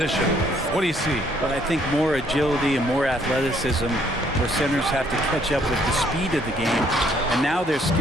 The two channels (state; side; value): normal; both; correlation 0.65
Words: what do you see? Well, I think more agility and more athleticism, where centers have to catch up with the speed of the game. And now their